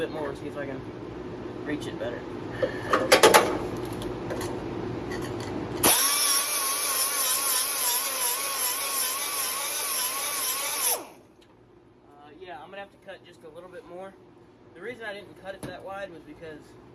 more and see if I can reach it better. Yeah, I'm gonna have to cut just a little bit more. The reason I didn't cut it that wide was because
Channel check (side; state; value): both; identical; correlation 1.00